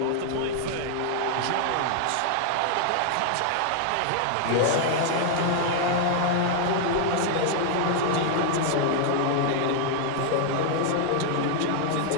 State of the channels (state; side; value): different; both; correlation 0.00